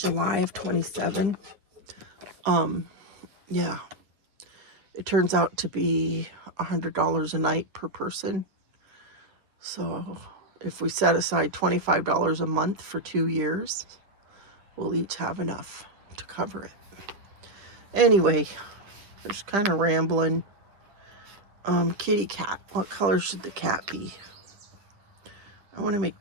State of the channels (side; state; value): left; late; 10 ms